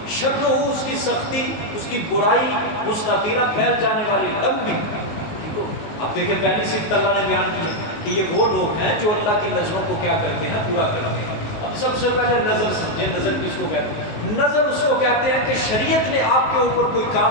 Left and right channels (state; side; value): late; right; 19 ms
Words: شرہ اس کی سختی, اس کی برائی, مستطیرا پھیل جانے والی, لمبی. اب دیکھیں پہلی صفت اللہ نے بیان کی ہے کہ یہ وہ لوگ ہیں جو اللہ کی نظروں کو کیا کرتے ہیں؟ پورا کرتے ہیں. اب سب سے پہلے نظر سمجھیں, نظر کس کو کہتے ہیں؟ نظر اس کو کہتے ہیں کہ شریعت نے آپ کے اوپر کوئی